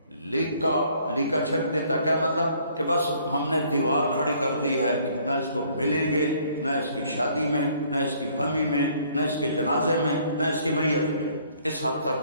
لیکا چھک دیتا کیا مطلب؟ کہ بس ہم نے دیوار کھڑی کر دی ہے، نہ اس کو ملیں گے، نہ اس کی شادی میں، نہ اس کی غمی میں، نہ اس کے جنازے میں، نہ اس کی میت میں۔ اس حد تک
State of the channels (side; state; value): both; inverted; correlation -0.61